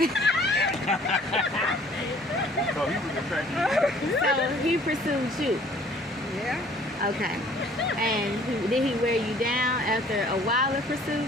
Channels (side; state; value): both; normal; correlation 0.55